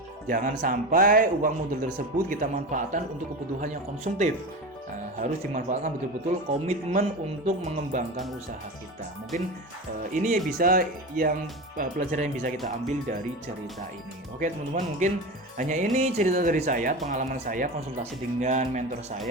Jangan sampai uang modal tersebut kita manfaatkan untuk kebutuhan yang konsumtif. Harus dimanfaatkan betul-betul komitmen untuk mengembangkan usaha kita. Mungkin ini bisa pelajaran yang bisa kita ambil dari cerita ini. Oke teman-teman, mungkin hanya ini cerita dari saya, pengalaman saya konsultasi dengan mentor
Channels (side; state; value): both; normal; correlation 0.25